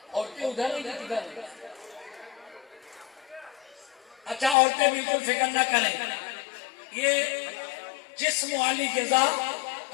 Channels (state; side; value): drops out; right; at 4.5 s